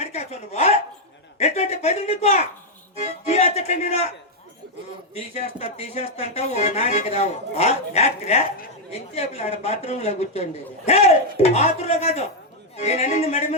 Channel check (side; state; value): both; normal; correlation -0.01